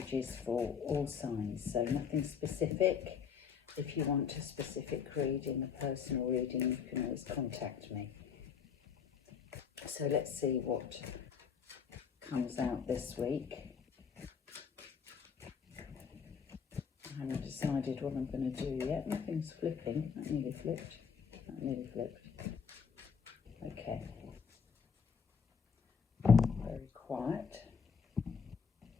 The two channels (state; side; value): quieter; right; 6.6 dB